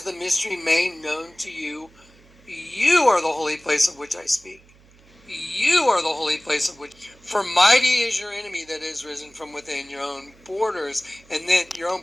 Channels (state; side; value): noise; right; hum, 27 dB below the sound